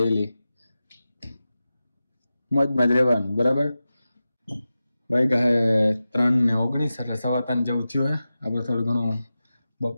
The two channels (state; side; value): inverted; both; correlation -0.93